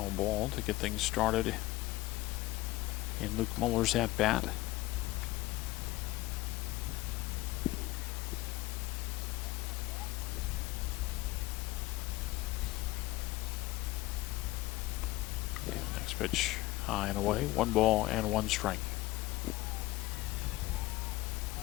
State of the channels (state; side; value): quieter; right; 18.5 dB